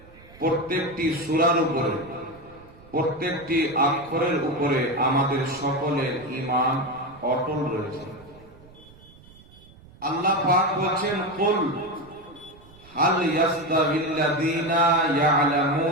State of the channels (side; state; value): right; noise; rumble, 24 dB below the sound